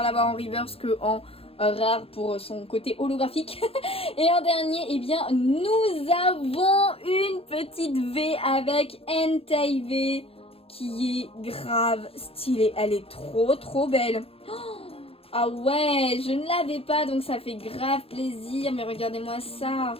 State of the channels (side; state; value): right; late; 0.28 ms